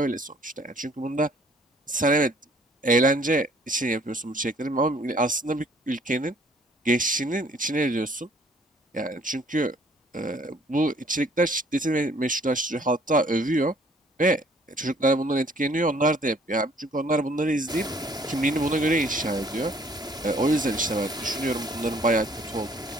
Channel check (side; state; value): both; normal; correlation 0.59